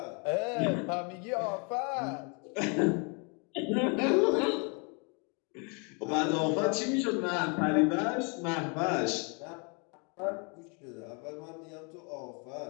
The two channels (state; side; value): quieter; right; 34.3 dB